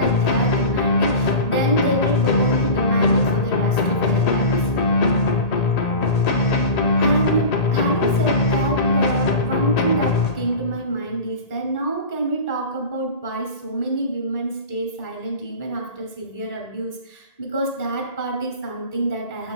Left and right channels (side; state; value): right; late; 1.8 ms